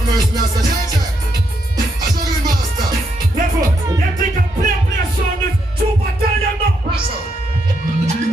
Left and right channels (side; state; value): both; normal; correlation 0.78